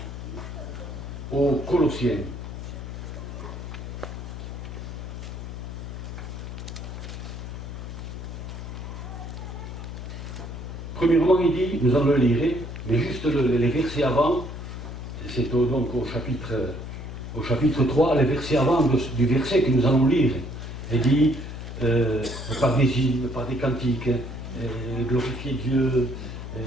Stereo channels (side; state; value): left; noise; hum, 8 dB below the sound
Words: aux Colossiens. Premièrement, il dit, nous allons le lire, mais juste les versets avant, c'est donc au chapitre 3, les versets avant du verset que nous allons lire. Il dit, par des hymnes, par des cantiques, glorifier Dieu, vous